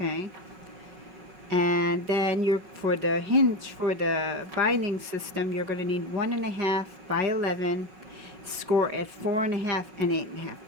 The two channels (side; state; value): left; late; 5.3 ms